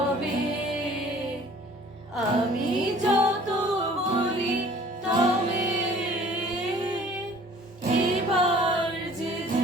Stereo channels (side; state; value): both; normal; correlation 0.51